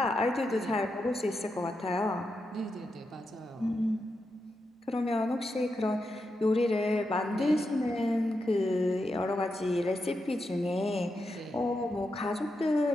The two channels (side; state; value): both; normal; correlation 0.86